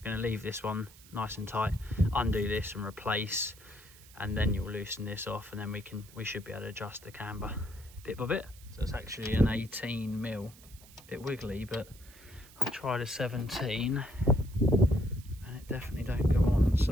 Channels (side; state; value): right; noise; hiss, 22 dB below the sound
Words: Going to leave this one nice and tight, undo this and replace, and then you'll loosen this off, and then we should be able to adjust the camber bit by bit. So it's actually an 18 mil, bit wiggly, but I've tried a 17 and it definitely don't go on.